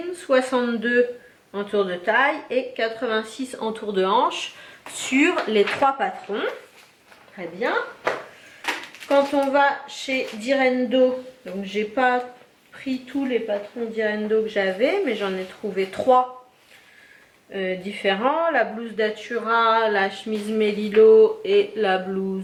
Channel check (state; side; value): identical; both; correlation 1.00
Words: 62 en tour de taille et 86 en tour de hanche sur les 3 patrons. Très bien. Quand on va chez Direndo, donc j'ai pas pris tous les patrons Direndo que j'avais, mais j'en ai trouvé 3 différents. La blouse Datura, la chemise Melilot et la